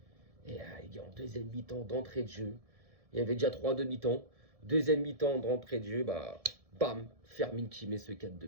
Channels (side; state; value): left; late; 1.7 ms